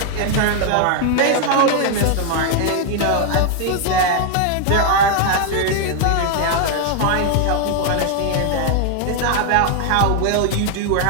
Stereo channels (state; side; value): different; both; correlation 0.00